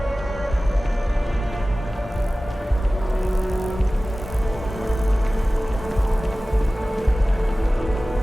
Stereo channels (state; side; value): normal; both; correlation 0.97